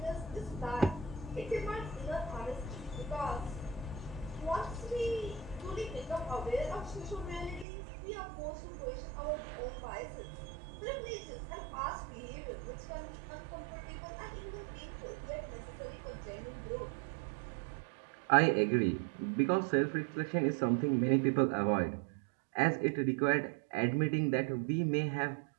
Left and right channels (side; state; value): left; drops out; at 7.7 s